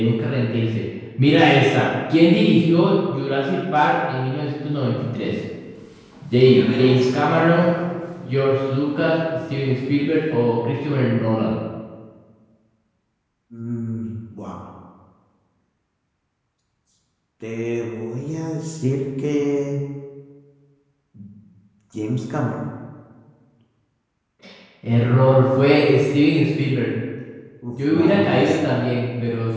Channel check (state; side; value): identical; both; correlation 1.00